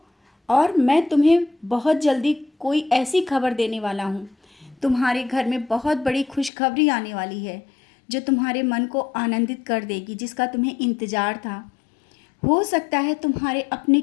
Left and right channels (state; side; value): drops out; right; at 6.5 s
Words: और मैं तुम्हें बहुत जल्दी कोई ऐसी खबर देने वाला हूँ। तुम्हारे घर में बहुत बड़ी खुशखबरी आने वाली है, जो तुम्हारे मन को आनंदित कर देगी, जिसका तुम्हें इंतज़ार था। हो सकता है तुम्हारे अपने